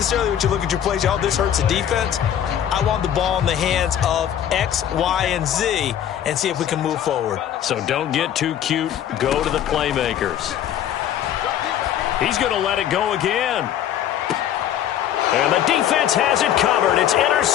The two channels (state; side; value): quieter; right; 10.5 dB